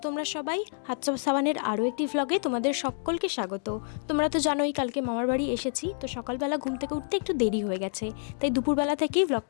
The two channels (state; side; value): silent; right; digital silence